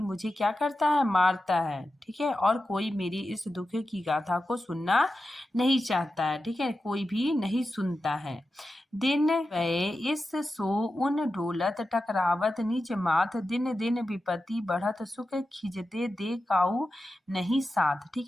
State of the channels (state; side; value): normal; both; correlation 0.92